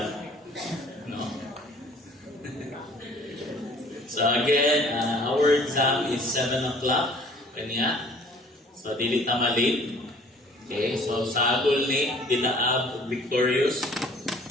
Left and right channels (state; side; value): normal; both; correlation 0.53